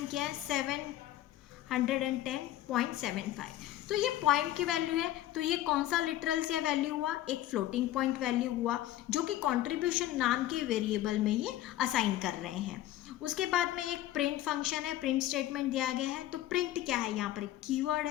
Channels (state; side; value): quieter; right; 13.9 dB